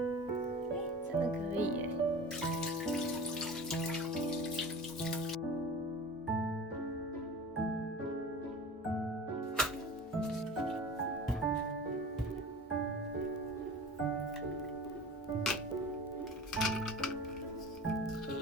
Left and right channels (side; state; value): both; normal; correlation 0.37